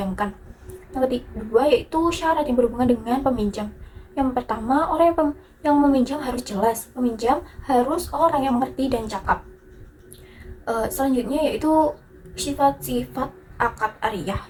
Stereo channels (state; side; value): identical; both; correlation 1.00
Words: Yang kedua yaitu syarat yang berhubungan dengan peminjam. Yang pertama, orang yang meminjam harus jelas, peminjam harus orang yang mengerti dan cakap. Selanjutnya yaitu sifat-sifat akad ariyah.